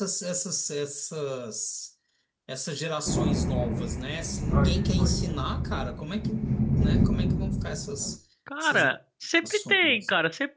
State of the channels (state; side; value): identical; both; correlation 1.00